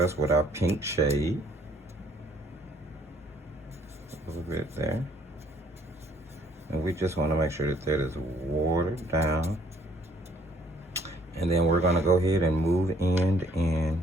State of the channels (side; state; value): both; normal; correlation 0.62